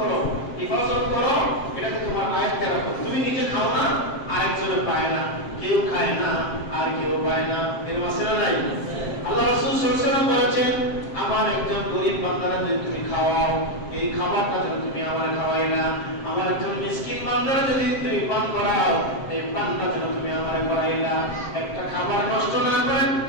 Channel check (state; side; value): late; right; 7.6 ms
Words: হেফাজত করো, এটাকে তোমার আয়ত্তে রাখো। তুমি নিজে খাও না, আরেকজনে পায় না, কেউ খায় না আর কেউ পায় না, এর মাঝে নাই। আল্লাহ রাসূল সাল্লাল্লাহু আলাইহি ওয়াসাল্লাম বলেছেন আমার একজন গরীব বান্দারা যদি তুমি খাওয়াও, এই খাবারটা যদি তুমি আমার খাওয়াই না, আমার একজন মিসকিন বান্দারা যদি তুমি পান করাও, এই পানটা যদি তুমি আমার করাই না, একটা খাবার নষ্ট না করে